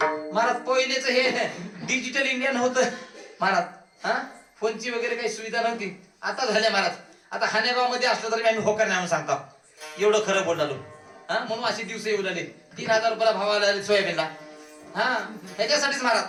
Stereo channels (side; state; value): both; identical; correlation 1.00